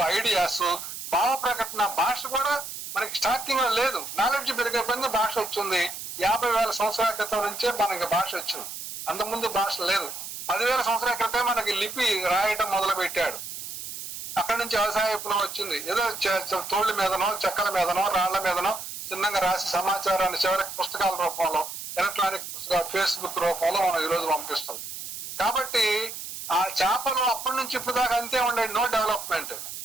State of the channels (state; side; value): noise; right; hiss, 8 dB below the sound